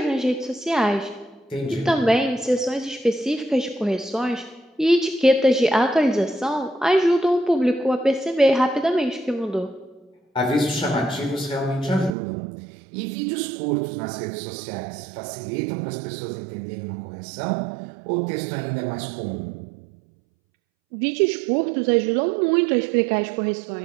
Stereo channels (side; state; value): left; drops out; at 12.1 s